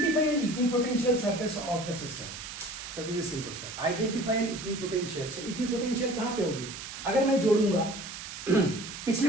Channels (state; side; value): noise; right; hiss, 10 dB below the sound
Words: an equipotential surface of the system. So this is simple sir. Identify an equipotential. So equipotential कहाँ पे होगी? अगर मैं जोड़ूंगा पिछले